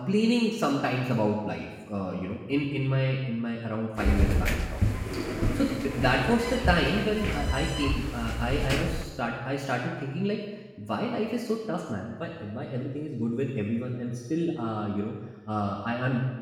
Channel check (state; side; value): identical; both; correlation 1.00